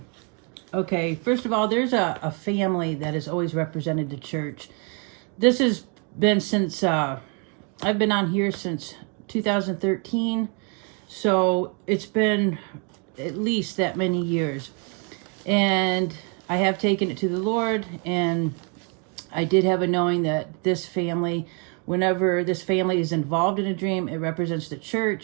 Okay, first of all, there's a family that has always represented the church. This has been since, I've been on here since 2013. So it's been at least that many years. And I have taken it to the Lord. And I did have a knowing that this family, whenever this family is involved in a dream, it represents the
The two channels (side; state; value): left; quieter; 36.8 dB